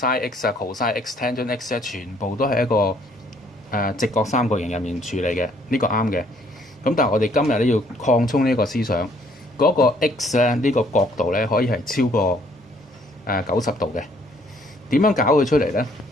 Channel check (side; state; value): both; normal; correlation 0.64